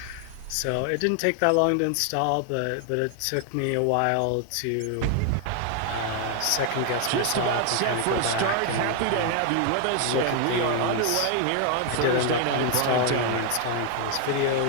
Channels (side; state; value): both; different; correlation 0.00